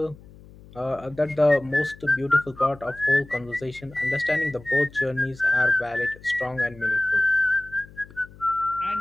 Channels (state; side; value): noise; left; hum, 21 dB below the sound